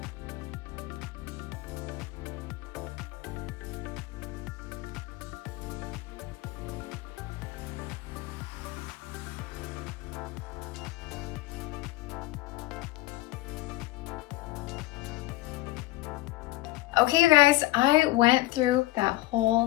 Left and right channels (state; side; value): quieter; right; 18.1 dB